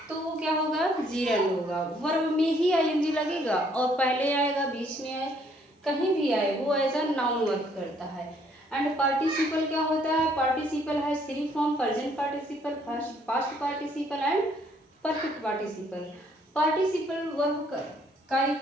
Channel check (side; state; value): both; normal; correlation 0.65